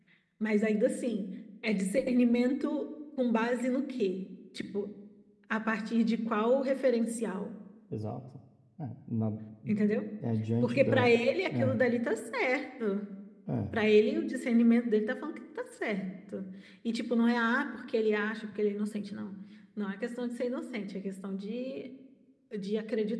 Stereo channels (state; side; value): identical; both; correlation 1.00